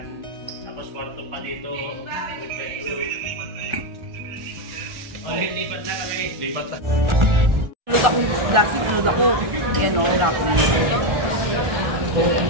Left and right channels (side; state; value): left; late; 1.4 ms